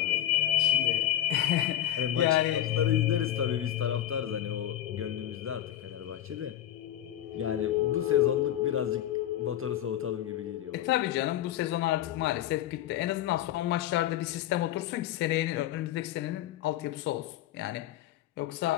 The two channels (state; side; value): quieter; right; 12.3 dB